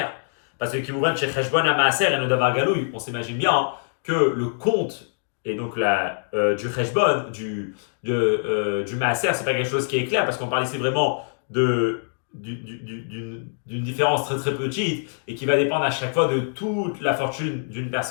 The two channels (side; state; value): right; silent; digital silence